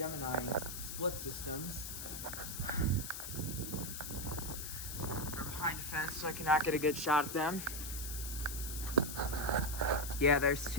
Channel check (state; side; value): noise; left; hiss, 7 dB below the sound